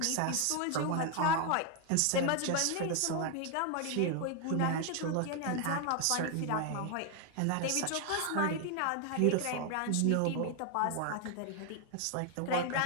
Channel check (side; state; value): both; different; correlation 0.01